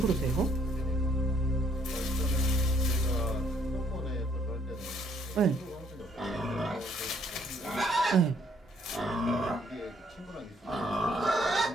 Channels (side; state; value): both; normal; correlation 0.66